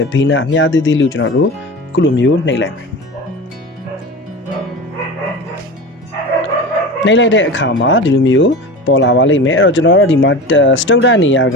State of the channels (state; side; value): normal; both; correlation 0.31